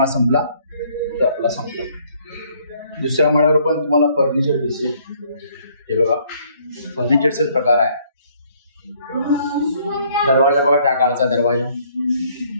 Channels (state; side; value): inverted; both; correlation -0.64